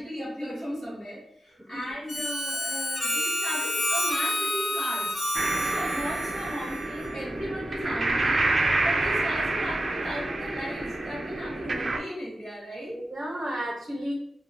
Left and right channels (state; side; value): normal; both; correlation 0.90